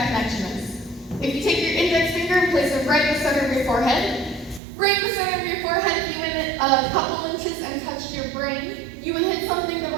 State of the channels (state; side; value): drops out; left; at 4.6 s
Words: connection is. If you take your index finger and place it right in the center of your forehead, right in the center of your forehead, you hit it a couple inches and touch your brain, you would hit something that